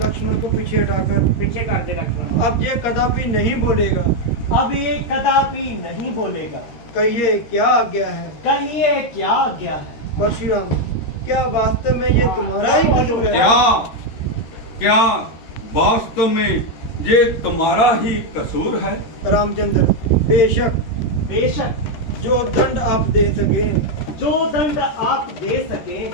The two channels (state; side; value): late; right; 13 ms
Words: को पीछे पीछे कर दे लक्ष्मण। अब ये कदापि नहीं बोलेगा। कहिए क्या आज्ञा है। परशुराम, क्या वास्तव में ये तुम्हारा ही कसूर है? क्या वास्तव में ये तुम्हारा ही कसूर है? रामचंद्र, बेशक जो दंड आप दे सके